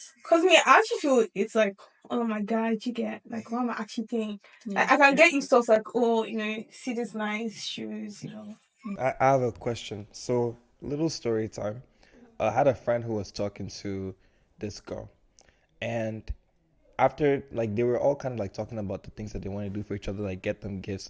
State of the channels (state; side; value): identical; both; correlation 1.00